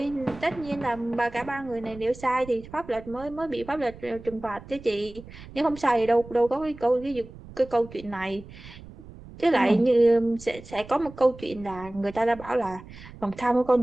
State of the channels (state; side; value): noise; right; rumble, 17 dB below the sound